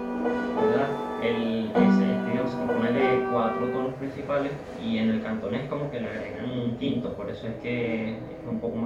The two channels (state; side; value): identical; both; correlation 1.00